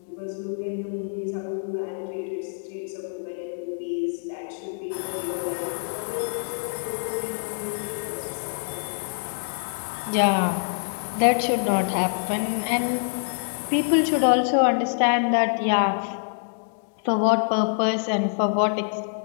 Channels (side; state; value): right; silent; digital silence